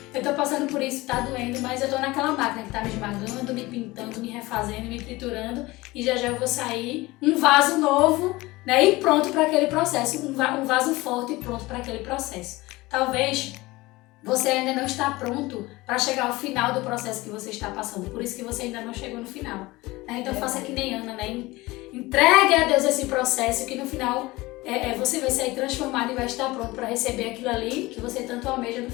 Eu tô passando por isso, tá doendo, mas eu tô naquela máquina que tá me esmagando, me pintando, me refazendo, me triturando e já eu vou sair um vaso novo, né, e pronto para aquele processo, um vaso forte e pronto para aquele processo. Talvez você ainda não está pronto para chegar ao final do processo que você está passando, por isso que você ainda não chegou no final. Né? Então faça que nem Ana, né? Entregue a Deus esse processo que no final você vai sair transformado e vai estar pronto para receber aquilo ali que você tanto almeja no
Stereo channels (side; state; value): right; quieter; 20.6 dB